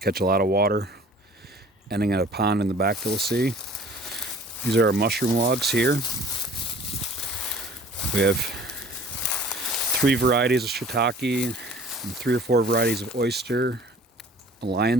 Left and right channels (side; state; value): both; normal; correlation 0.49